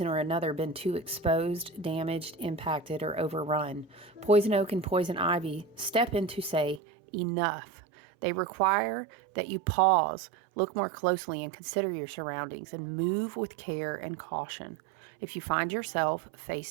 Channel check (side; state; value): left; drops out; at 6.8 s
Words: or another, been too exposed, damaged, impacted, or overrun. Poison oak and poison ivy step in to say, enough. They require that you pause, look more closely, and consider your surroundings, and move with care and caution. If you find yourself